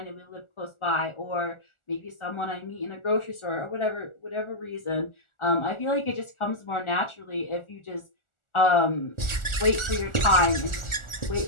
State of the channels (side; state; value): right; late; 1.4 ms